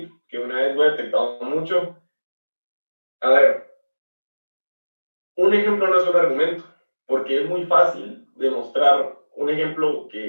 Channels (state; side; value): inverted; both; correlation -1.00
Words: que una vez lo he detectado mucho. A ver, un ejemplo no es un argumento, porque es muy fácil demostrar un ejemplo